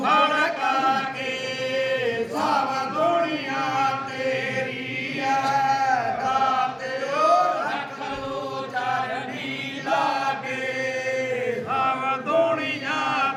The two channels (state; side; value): identical; both; correlation 1.00